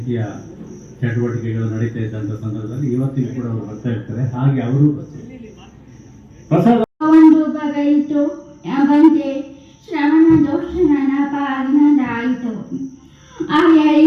ಚಟುವಟಿಕೆಗಳು ನಡೀತಾ ಇದ್ದಂಥ ಸಂದರ್ಭದಲ್ಲಿ ಇವತ್ತಿಗೂ ಕೂಡ ಅವರು ಬರ್ತಾ ಇರ್ತಾರೆ. ಹಾಗೆ ಅವರು ಪ್ರಸಾದ ಒಂದು ಬಗೆಯಿತು ಬಂತೆ ಶ್ರವಣ ದೋಷ ನನ್ನ ಪಾಲಿನದಾಯಿತು. ಆ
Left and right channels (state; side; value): identical; both; correlation 1.00